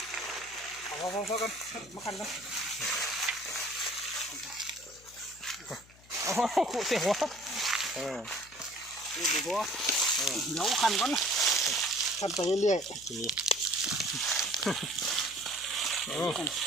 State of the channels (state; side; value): noise; left; hum, 24 dB below the sound